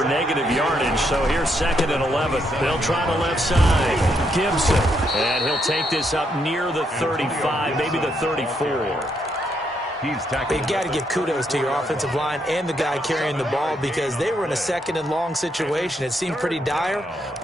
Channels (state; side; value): normal; both; correlation 0.76